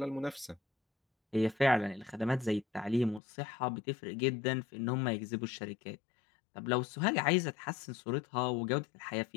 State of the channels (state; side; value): drops out; right; at 3.2 s